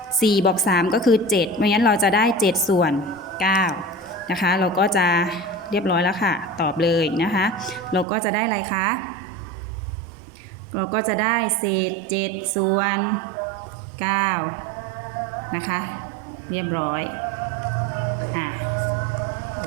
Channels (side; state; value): left; drops out; at 8.1 s